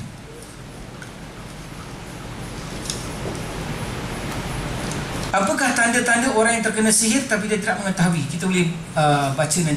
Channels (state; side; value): identical; both; correlation 1.00